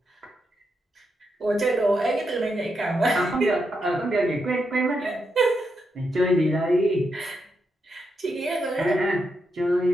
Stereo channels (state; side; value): normal; both; correlation 0.83